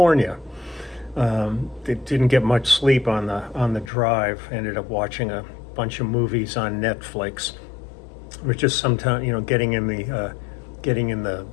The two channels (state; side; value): drops out; right; at 3.9 s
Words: Didn't get much sleep on the drive. Ended up watching a bunch of movies on Netflix. We're just sometimes, getting in the